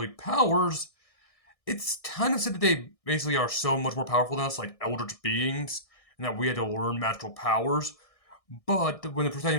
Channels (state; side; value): late; right; 1.6 ms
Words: powers, it's kind of said that they basically are so much more powerful than us, like eldritch beings, and that we had to learn magical powers. But when the